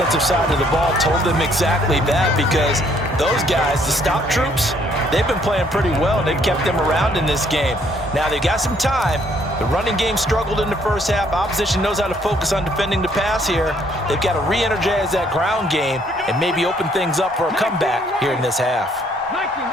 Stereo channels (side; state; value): both; normal; correlation 0.66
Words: side of the ball told them exactly that, because those guys, the stop troops, they've been playing pretty well, and they've kept them around in this game. Now they've got some time. The running game struggled in the first half. Opposition knows how to focus on defending the pass here. They've got to re-energize that ground game and maybe open things up for a comeback here in this half.